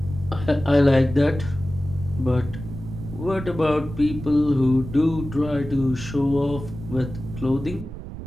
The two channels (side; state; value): right; noise; rumble, 11 dB below the sound